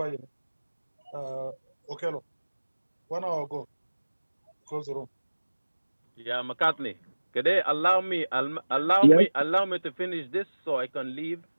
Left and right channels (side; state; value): both; inverted; correlation -1.00